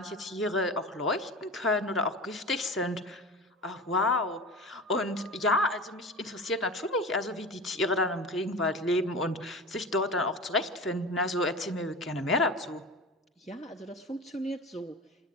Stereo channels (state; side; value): normal; both; correlation 0.31